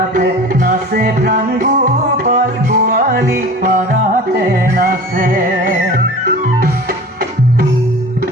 নাচে প্রাণ গোপাল গোয়ালি পাড়াতে নাচে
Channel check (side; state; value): both; normal; correlation 0.38